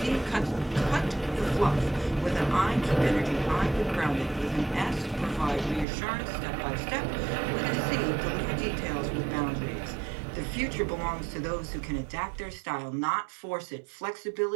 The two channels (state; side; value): drops out; left; at 5.9 s